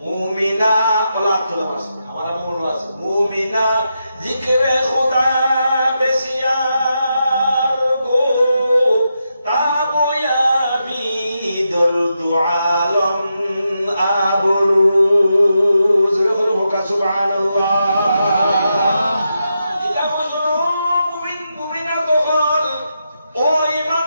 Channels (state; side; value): inverted; both; correlation -0.85